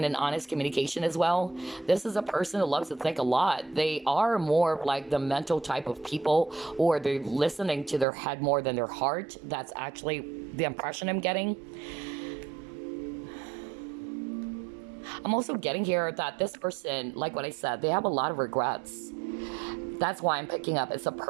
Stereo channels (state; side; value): drops out; left; at 8.1 s